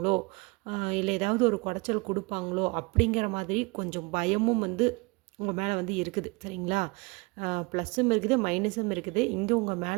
இல்லை ஏதாவது ஒரு குடைச்சல் கொடுப்பாங்களோ அப்படிங்கிற மாதிரி கொஞ்சம் பயமும் வந்து உங்கள் மேலே வந்து இருக்குது. சரிங்களா? ப்ளஸ்ஸும் இருக்குது, மைனஸும் இருக்குது. இங்கே உங்கள்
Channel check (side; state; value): left; quieter; 27.4 dB